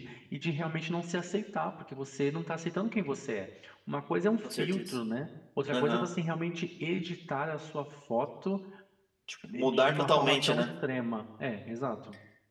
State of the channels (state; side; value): identical; both; correlation 1.00